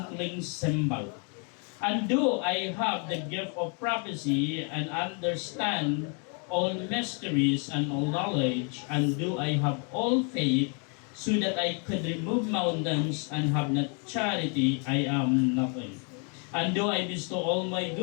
cymbal. And do I have the gift of prophecy, and understand all mysteries and all knowledge, and do I have all faith, so that I could remove mountains, and have not charity, I am nothing. And do I bestow all my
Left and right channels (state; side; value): quieter; right; 38.1 dB